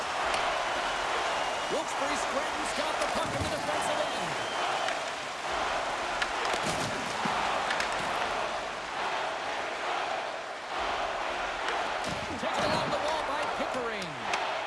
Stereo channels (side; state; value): both; identical; correlation 1.00